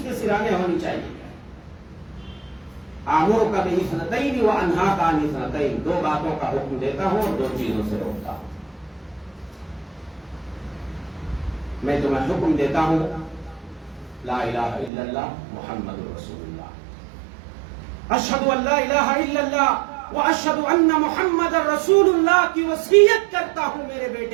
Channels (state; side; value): drops out; left; at 14.9 s